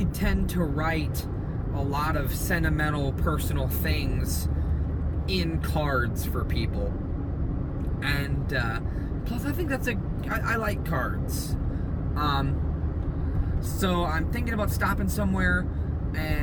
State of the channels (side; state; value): both; identical; correlation 1.00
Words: tend to write a lot of sentimental personal things in cards for people. And plus I think I like cards. So I'm thinking about stopping somewhere,